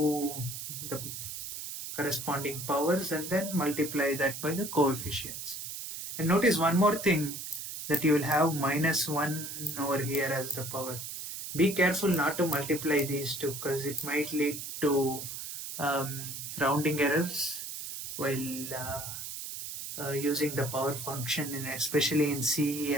the corresponding powers, and then multiply that by the coefficients. And notice one more thing, that you will have minus 1 over here as the power. Be careful not to multiply these two, because it might lead to rounding errors while using the power function, especially in C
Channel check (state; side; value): noise; right; hiss, 7 dB below the sound